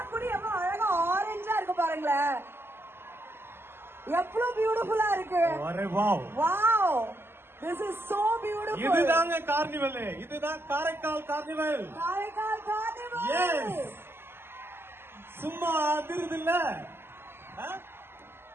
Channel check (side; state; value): left; late; 0.11 ms